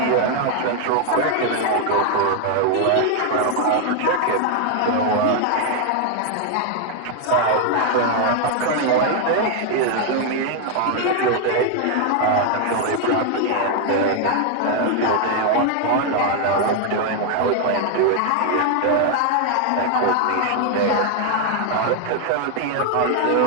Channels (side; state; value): both; different; correlation 0.00